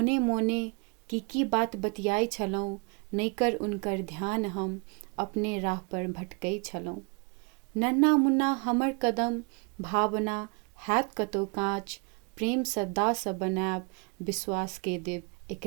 मोने की बात बतियाई छलहुँ, नैकर उनकर ध्यान हम अपने राह पर भटकै छलहुँ। नन्ना मुन्ना हमर कदम, भावना हैत कतौ काँच, प्रेम सँ दास बनायब, विश्वास के देब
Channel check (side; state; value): left; quieter; 34.0 dB